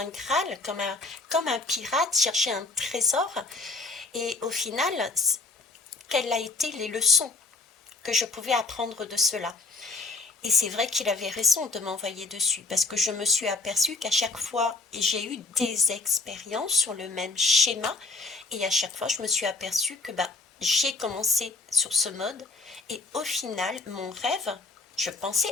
Graal, comme un pirate, chercher un trésor. Et au final, quelles ont été les leçons que je pouvais apprendre de cela? Et c'est vrai qu'il avait raison de m'envoyer dessus, parce que je me suis aperçue qu'à chaque fois, j'ai eu des expériences sur le même schéma, et à chaque fois, je me suis aperçue que j'ai commencé sur ce mode, et au final, mon rêve, je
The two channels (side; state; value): right; quieter; 3.6 dB